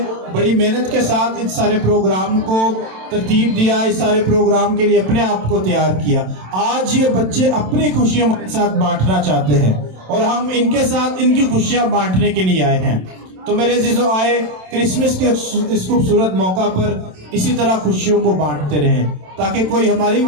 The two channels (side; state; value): left; late; 27 ms